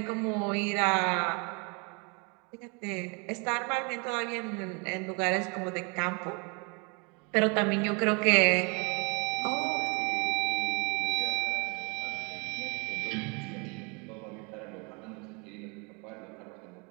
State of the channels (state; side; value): quieter; left; 32.7 dB